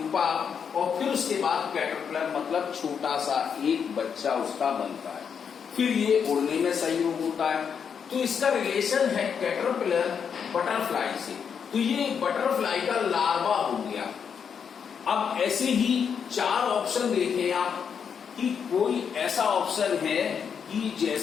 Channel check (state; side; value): quieter; right; 7.0 dB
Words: और फिर उसके बाद कैटरपिलर मतलब छोटा सा एक बच्चा उसका बनता है। फिर ये उड़ने में सहयोग होता है। तो इसका रिलेशन है कैटरपिलर बटरफ्लाई से। तो ये बटरफ्लाई का लार्वा हो गया। अब ऐसे ही 4 ऑप्शन देखें आप कि कोई ऐसा ऑप्शन है कि